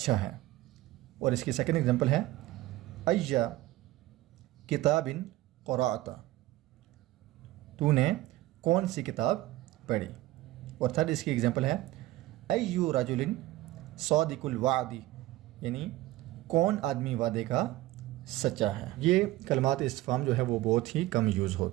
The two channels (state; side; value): quieter; left; 16.9 dB